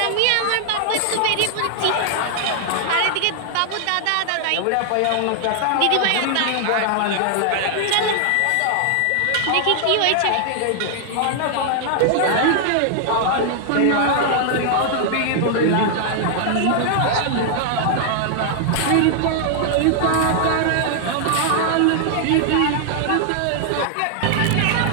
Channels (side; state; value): both; different; correlation 0.00